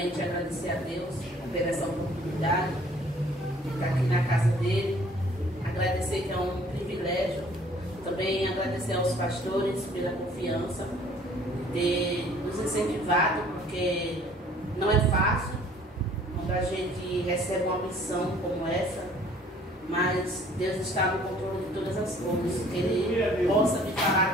agradecer a Deus por essa oportunidade de estar aqui na casa dele. Agradecer que é um privilégio. Também agradecer aos pastores pela confiança de ter nos incentivado, porque não é fácil quando a gente recebe uma missão como essa, mas Deus está no controle de todas as coisas, que Ele possa me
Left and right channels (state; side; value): normal; both; correlation 0.56